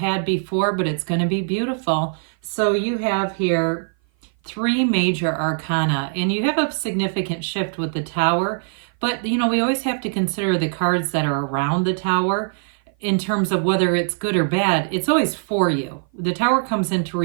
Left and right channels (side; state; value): left; silent; 56 dB below the other